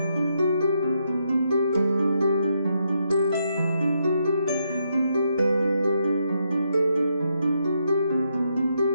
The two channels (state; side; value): inverted; both; correlation -0.79